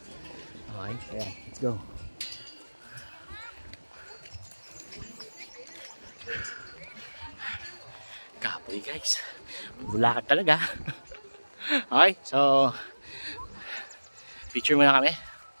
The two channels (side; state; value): both; inverted; correlation -1.00